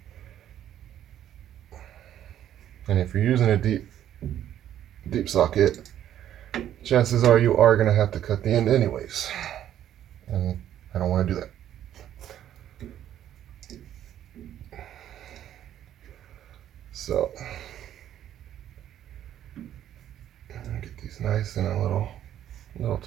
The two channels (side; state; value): left; quieter; 11.2 dB